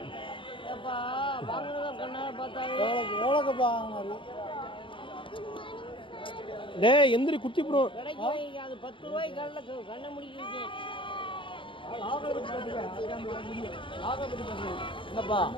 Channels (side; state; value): right; late; 0.25 ms